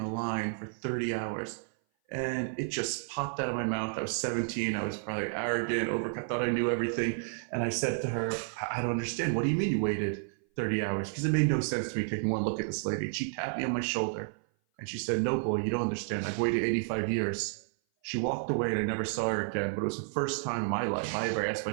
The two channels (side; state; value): left; silent; 56 dB below the other